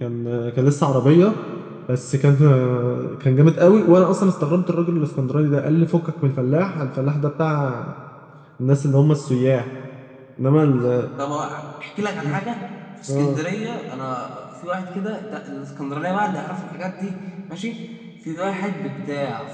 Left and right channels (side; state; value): both; identical; correlation 1.00